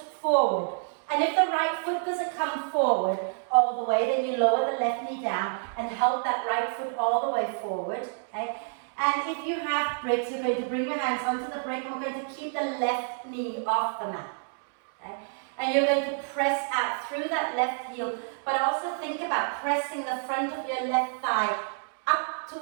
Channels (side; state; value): left; silent; digital silence